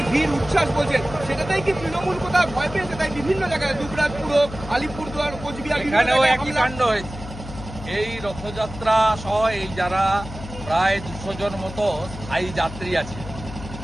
ভিড় উচ্ছ্বাস বলছেন, সেটাতেই কি তৃণমূল কোথাও ভয় পেয়েছে? তাই বিভিন্ন জায়গায় দুবরাজপুর, আলিপুরদুয়ার, কোচবিহার এখানেও একই কাণ্ড হয়েছে। এই রথযাত্রা সহ এই যারা প্রায় 200 জন মতো স্থায়ী যাত্রী আছে,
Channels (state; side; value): noise; left; hum, 12 dB below the sound